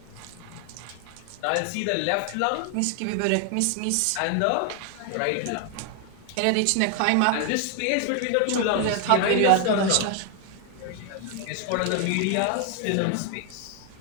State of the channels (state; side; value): different; both; correlation 0.00